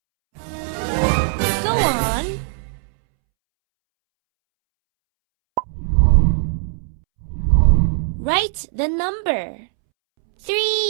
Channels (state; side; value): silent; left; 66 dB below the other